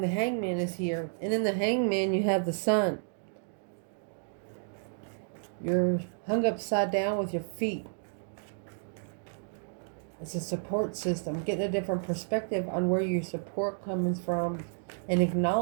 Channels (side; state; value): left; silent; digital silence